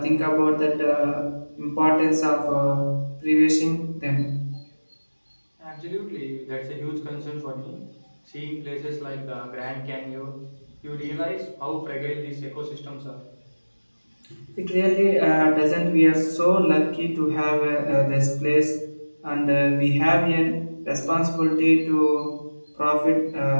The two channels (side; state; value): both; inverted; correlation -1.00